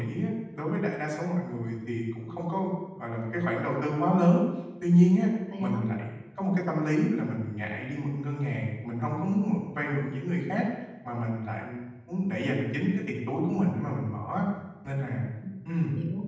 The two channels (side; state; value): both; identical; correlation 1.00